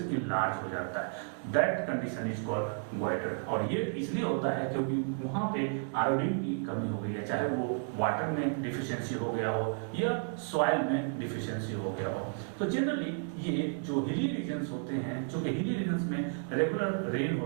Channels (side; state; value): left; silent; 55 dB below the other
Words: लार्ज हो जाता है। That condition is called goitre. और ये इसलिए होता है क्योंकि वहां पे आयोडीन की कमी हो गई है, चाहे वो वाटर में डिफिशियंसी हो गया हो या सॉइल में डिफिशियंसी हो गया हो। तो जनरली ये जो हिली रीजन्स होते हैं, चूंकि हिली रीजन्स में रेगुलर रेन